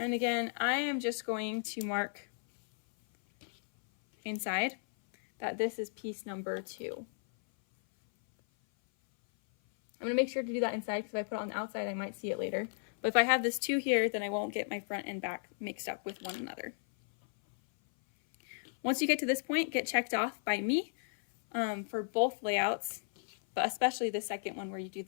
again, I am just going to mark inside that this is piece number 2. I'm going to make sure to do that inside, because if I put it on the outside, I might see it later. But if I have this 2 here, then I won't get my front and back mixed up with one another. Once you get to this point, get checked off by me for both layouts, but especially the second one where you do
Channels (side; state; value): right; silent; 55 dB below the other